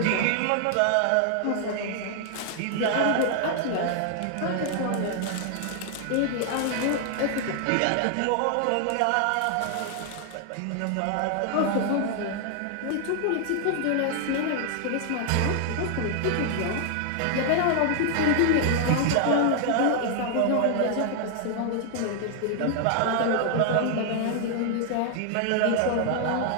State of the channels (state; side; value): different; both; correlation 0.00